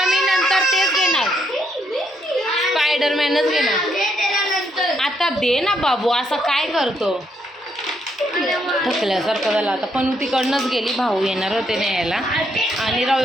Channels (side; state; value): both; normal; correlation 0.75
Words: मी नंतर तेच घेणार. स्पायडरमॅनच घेणार. आता दे ना बाबू. असं काय करतो. थकल्यासारखं झालं आता. पण तिकडनंच गेली. भाऊ येणार होते न्यायला. आणि